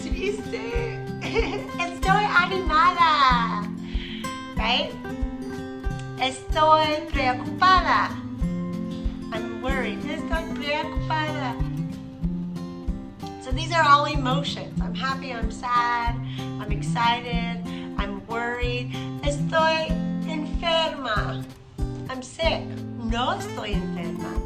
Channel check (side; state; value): both; identical; correlation 1.00